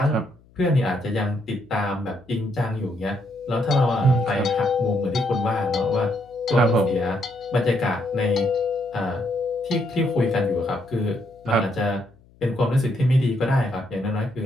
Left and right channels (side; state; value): left; noise; hum, 29 dB below the sound